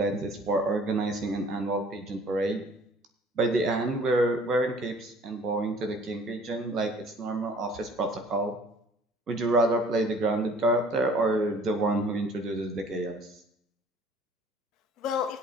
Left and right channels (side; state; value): both; normal; correlation 0.53